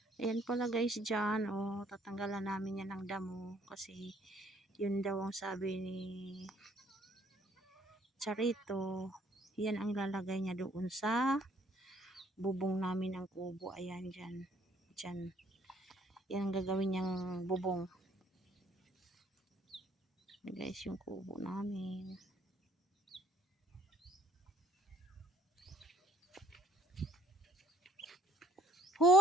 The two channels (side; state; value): both; normal; correlation 0.62